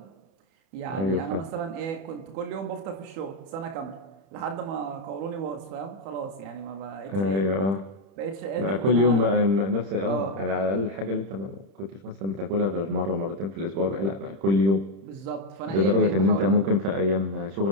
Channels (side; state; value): left; late; 31 ms